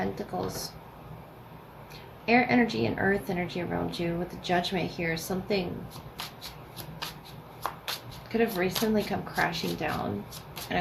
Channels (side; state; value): both; identical; correlation 1.00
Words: Air energy and earth energy around you with the Judgment here. Something could have recently come crashing down. And